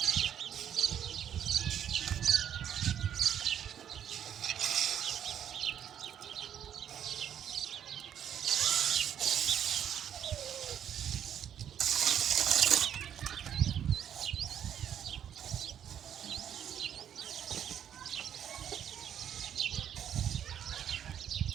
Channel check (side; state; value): left; quieter; 9.5 dB